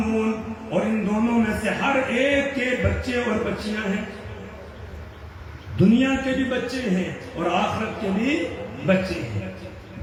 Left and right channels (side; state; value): both; identical; correlation 1.00